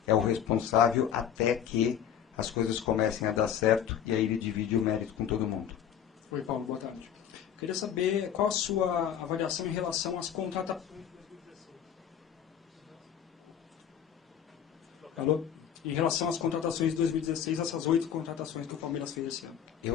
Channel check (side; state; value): right; quieter; 9.1 dB